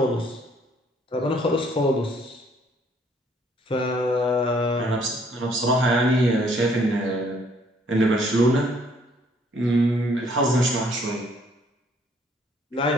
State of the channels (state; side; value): normal; both; correlation 0.64